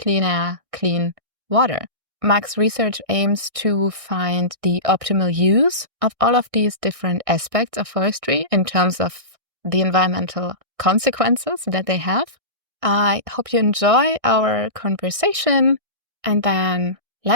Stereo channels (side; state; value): left; late; 1.6 ms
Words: air, clean water. Max's research aims to find the optimal use of all of these different aspects of forestry in terms of the environmental consequences that they have. I hope you enjoy our conversation, and then